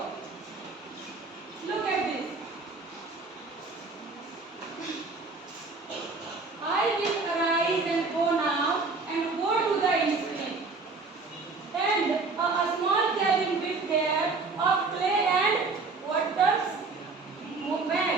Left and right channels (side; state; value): left; quieter; 4.0 dB